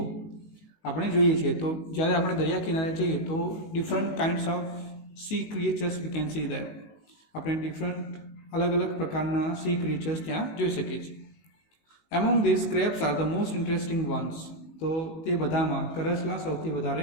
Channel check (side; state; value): right; late; 19 ms